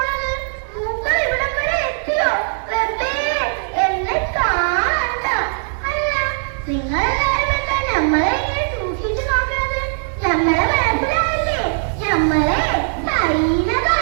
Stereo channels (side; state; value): left; silent; digital silence